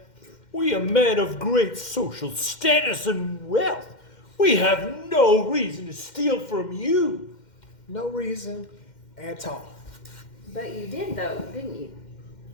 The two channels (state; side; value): late; right; 2.1 ms